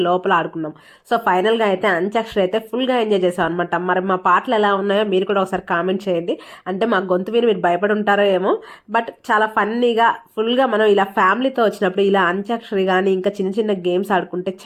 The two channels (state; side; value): identical; both; correlation 1.00